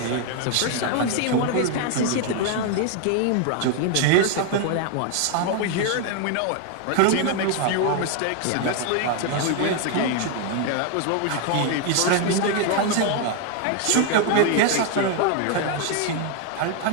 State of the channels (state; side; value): different; both; correlation 0.00